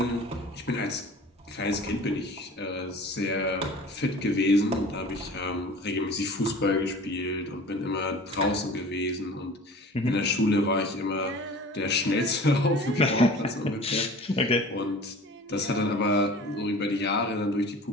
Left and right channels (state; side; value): normal; both; correlation 0.42